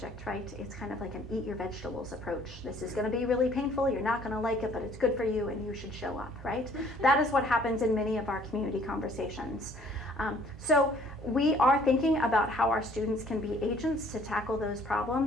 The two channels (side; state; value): both; normal; correlation 0.58